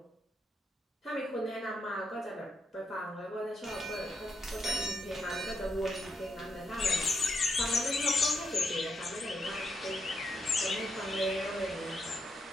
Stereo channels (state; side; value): normal; both; correlation 0.80